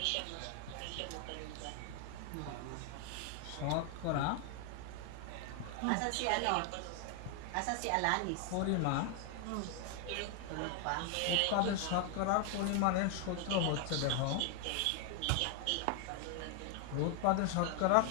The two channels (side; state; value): both; different; correlation 0.00